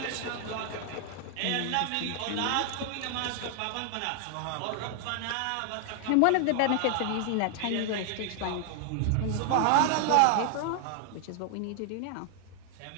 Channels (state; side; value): different; both; correlation 0.00